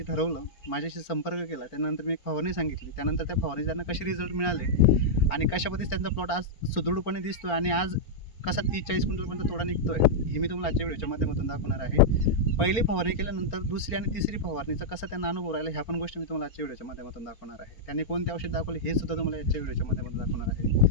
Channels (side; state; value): right; late; 4.5 ms